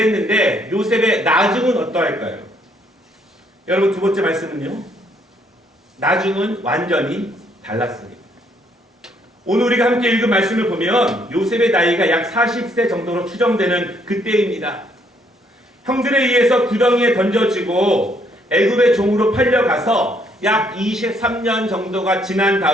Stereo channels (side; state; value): both; normal; correlation 0.69